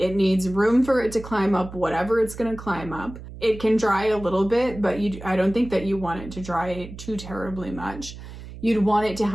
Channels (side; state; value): right; noise; hum, 13 dB below the sound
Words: needs room for it to climb up whatever it's going to climb up. It can dry a little bit, but I don't think that you want it to dry too terribly much. You'd want it to